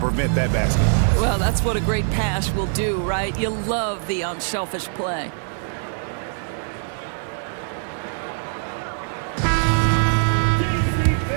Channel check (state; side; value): silent; left; 64 dB below the other